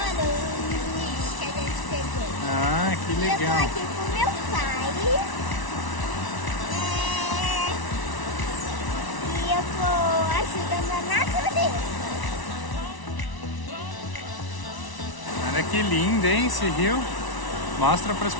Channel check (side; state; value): right; late; 1.0 ms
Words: o lixo que a gente pegou. Ah, que legal. Eu tô aqui com meu pai. E eu tô ajudando a natureza. Olha que lindo, hein, esse rio. Mostra para as